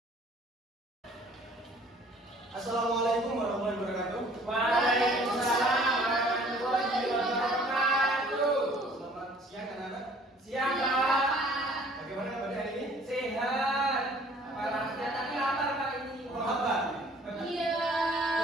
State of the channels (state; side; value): normal; both; correlation 0.54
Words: Assalamualaikum warahmatullahi wabarakatuh. Waalaikumsalam warahmatullahi wabarakatuh. Selamat siang anak-anak. Siang Pak. Bagaimana kabar hari ini? Sehat. Parahnya tapi lapar Pak ini. Oh, lapar? Iya.